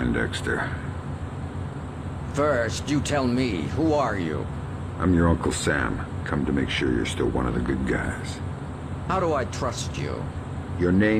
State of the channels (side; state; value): both; identical; correlation 1.00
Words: First, you tell me, who are you? I'm your Uncle Sam. Come to make sure you're still one of the good guys. How do I trust you? Your